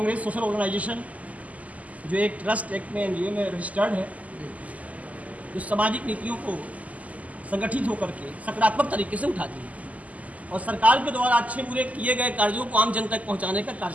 social organisation जो एक ट्रस्ट एक्ट में एनजीओ में रजिस्टर्ड है, जो सामाजिक नीतियों को संगठित होकर के सकारात्मक तरीके से उठाती है और सरकार के द्वारा अच्छे बुरे किए गए कार्यों को आम जनता तक पहुंचाने का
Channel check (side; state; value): left; late; 0.073 ms